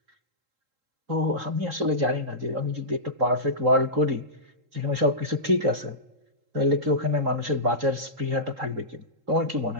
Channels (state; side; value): late; left; 3.8 ms